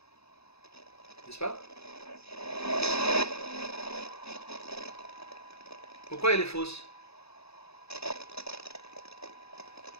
N'est-ce pas? Pourquoi elle est fausse?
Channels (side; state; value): right; late; 0.79 ms